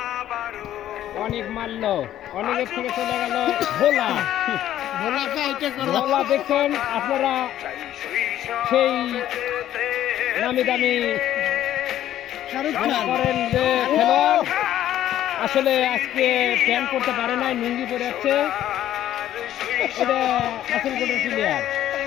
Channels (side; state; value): right; quieter; 12.2 dB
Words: অনেক মারল, অনেকের থেকে চলে গেল ভোলা। ভোলা দেখছেন আপনারা, সেই নামি দামি শাহরুখ মনে খান করেন যে খেলোয়াড় আসলে আজকে প্যান্ট করতে পারে নাই, লুঙ্গি পরে যাচ্ছে। এটা আসল কোটের প্লেয়ার।